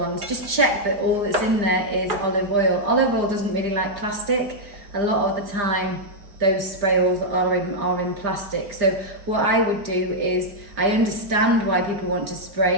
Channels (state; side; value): late; left; 4.9 ms